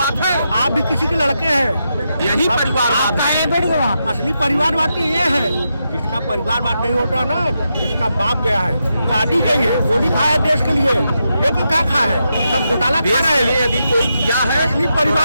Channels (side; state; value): both; inverted; correlation -0.85